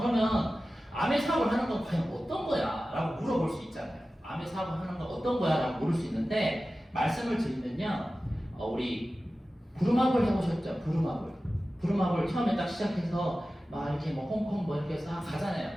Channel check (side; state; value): both; normal; correlation 0.95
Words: 그러면 암의 사업을 하는 건 과연 어떤 거야? 라고 물어볼 수 있잖아요. 암의 사업을 하는 건 어떤 거야? 라고 물을 수 있는데 말씀을 드리면요. 우리 부루마블 해보셨죠? 부루마블 처음에 딱 시작해서 막 이렇게 뭐 홍콩 뭐 이렇게 싹